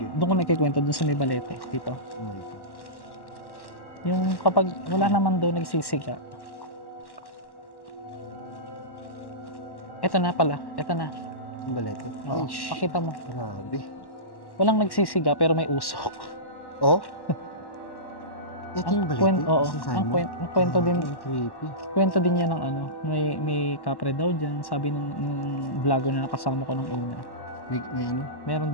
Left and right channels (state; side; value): late; right; 1.1 ms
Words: doon ko nagkikwento doon sa may balete dito. Oh my God. Yung kapag wala naman doon nagsisiga. Ito na pala. Ito na. Ang balete. Oo. Ay, shh. Pakita mo. Grabe. Walang nagsisiga pero may usok. Oh? Ito yung balete? Oo. Sinasabi Ang mo? kwento din. Ang creepy. Kwento din niya ng ano. May kapre daw dyan. Sabi ng vlogger na nakasama ko nung una. May ano?